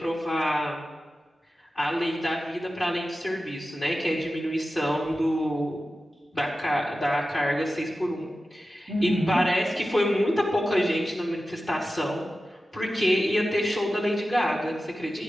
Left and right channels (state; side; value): normal; both; correlation 0.94